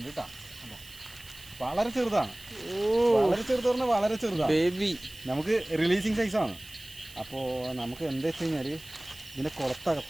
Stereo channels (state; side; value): noise; right; hiss, 19 dB below the sound